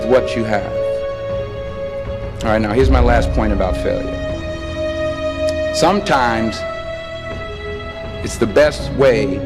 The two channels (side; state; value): both; identical; correlation 1.00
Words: what you have? All right, now here's my last point about failure. Sometimes it's the best way